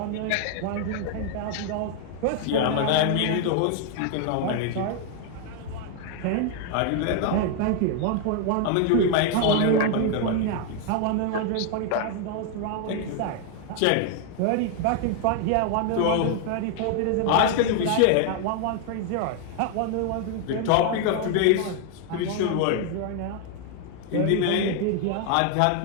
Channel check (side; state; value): both; different; correlation 0.00